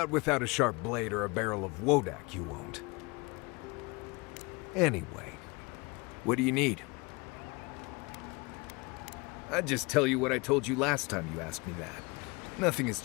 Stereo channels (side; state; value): right; quieter; 26.9 dB